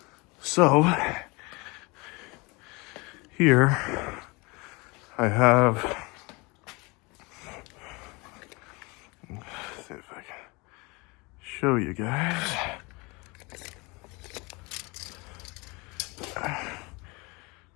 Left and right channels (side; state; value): right; quieter; 26.5 dB